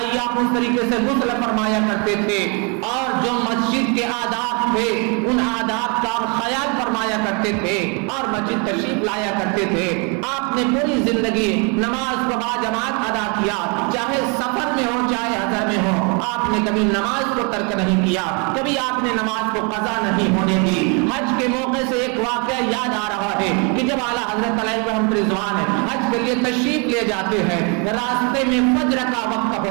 آپ اس طریقے سے غسل فرمایا کرتے تھے، اور جو مسجد کے آداب تھے ان آداب کا خیال فرمایا کرتے تھے اور مسجد تشریف لایا کرتے تھے۔ آپ نے پوری زندگی نماز کو باجماعت ادا کیا، چاہے سفر میں ہو چاہے حضر میں ہو۔ آپ نے کبھی نماز کو ترک نہیں کیا، کبھی آپ نے نماز کو قضا نہیں ہونے دی۔ حج کے موقع سے ایک واقعہ یاد آ رہا ہے کہ جب اعلیٰ حضرت علیہ رحمت رضوان حج کے لیے تشریف لے جاتے ہیں، راستے میں فجر کا وقت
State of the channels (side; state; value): left; quieter; 33.8 dB